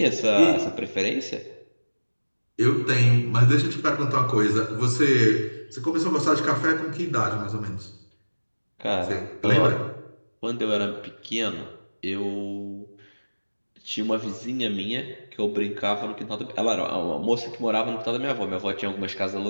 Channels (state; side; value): inverted; both; correlation -1.00